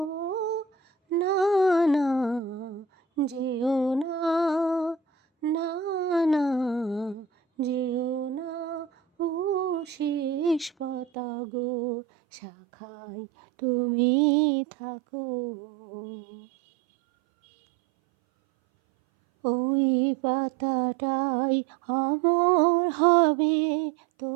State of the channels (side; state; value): left; drops out; at 11.1 s